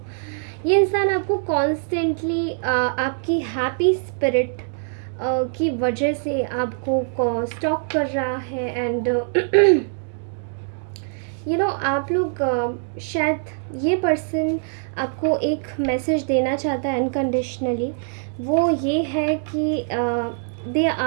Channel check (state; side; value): silent; left; digital silence